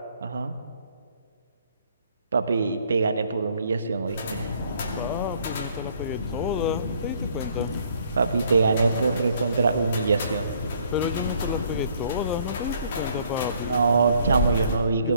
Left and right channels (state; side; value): inverted; both; correlation -0.63